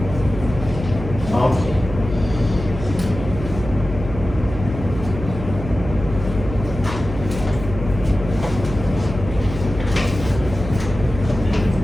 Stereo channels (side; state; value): right; noise; hum, 9 dB below the sound